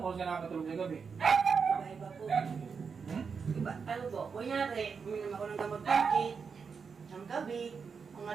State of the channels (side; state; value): left; quieter; 5.7 dB